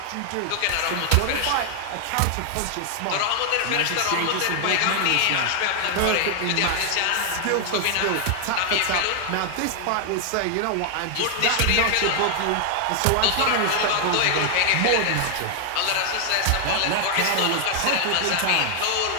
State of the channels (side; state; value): both; different; correlation 0.00